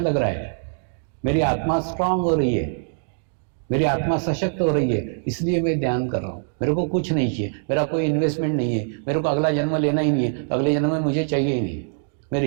रहा है, मेरी आत्मा स्ट्रांग हो रही है, मेरी आत्मा सशक्त हो रही है, इसलिए मैं ध्यान कर रहा हूं। मेरे को कुछ नहीं चाहिए, मेरा कोई इन्वेस्टमेंट नहीं है, मेरे को अगला जन्म लेना ही नहीं है, अगले जन्म में मुझे चाहिए ही नहीं, मैं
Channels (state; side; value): silent; left; digital silence